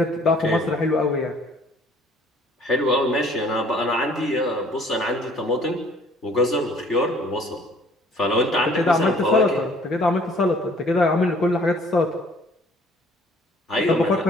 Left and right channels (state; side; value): normal; both; correlation 0.56